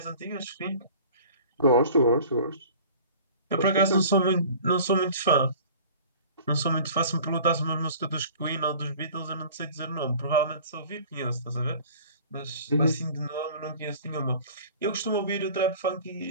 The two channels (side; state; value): both; inverted; correlation -0.45